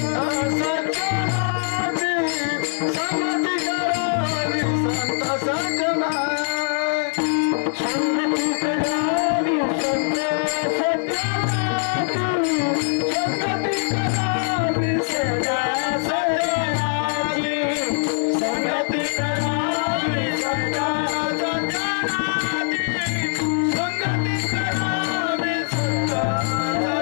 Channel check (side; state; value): right; silent; digital silence